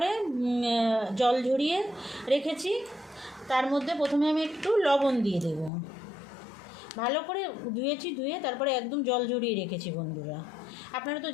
জল ঝরিয়ে রেখেছি, তার মধ্যে প্রথমে আমি একটু লবণ দিয়ে দেব, ভালো করে ধুয়ে তারপরে একদম জল ঝরিয়ে রেখেছি বন্ধুরা, আপনারা তো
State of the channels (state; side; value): drops out; right; at 5.7 s